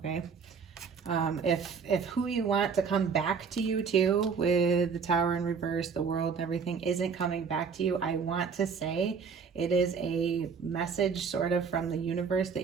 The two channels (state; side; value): quieter; left; 5.9 dB